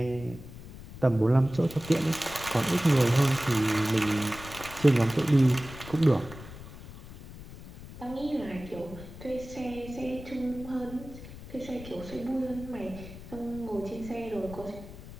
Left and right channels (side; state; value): left; noise; rumble, 15 dB below the sound